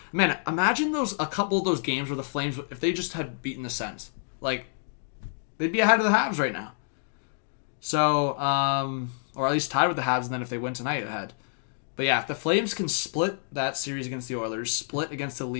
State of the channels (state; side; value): silent; right; digital silence